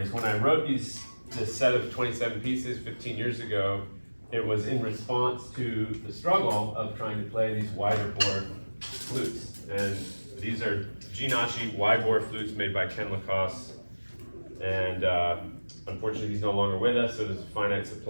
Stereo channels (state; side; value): inverted; both; correlation -1.00